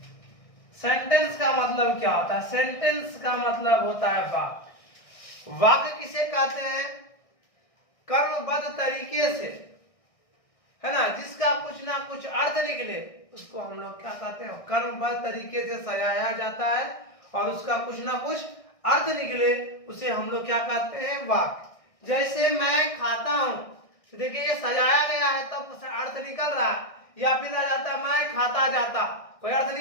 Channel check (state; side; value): late; right; 1.6 ms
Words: का मतलब क्या होता है? सेंटेंस का मतलब होता है वाक्य। वाक्य किसे कहते हैं? कर्मबद्ध तरीके से, है ना, जिसका कुछ ना कुछ अर्थ निकले उसको हम लोग क्या कहते हैं? कर्मबद्ध तरीके से सजाया जाता है और उसका कुछ ना कुछ अर्थ निकले उसे हम लोग क्या कहते हैं? वाक्य। जैसे मैं खाता हूं, तो देखिए ये सजाया गया है तब तो अर्थ निकल रहा है, या फिर आ जाता मैं खाता जाता, कोई अर्थ